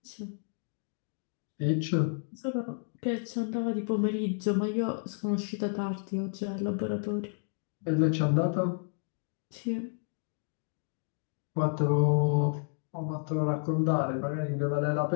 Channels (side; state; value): right; silent; digital silence